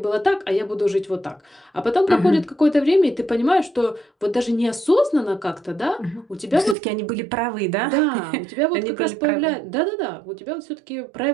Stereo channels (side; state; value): left; drops out; at 6.8 s